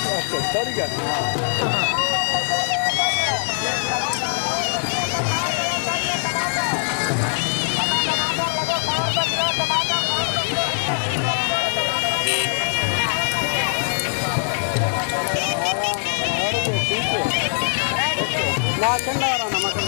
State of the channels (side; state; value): right; silent; digital silence